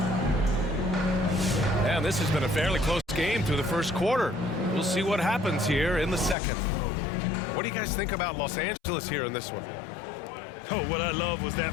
And this has been a fairly close game through the first quarter. We'll see what happens here in the second. What do you guys think about Los Angeles here in this one? Oh, what I love was that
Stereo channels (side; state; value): right; drops out; at 6.4 s